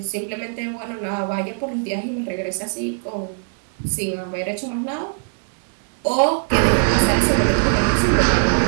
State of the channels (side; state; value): left; silent; 63 dB below the other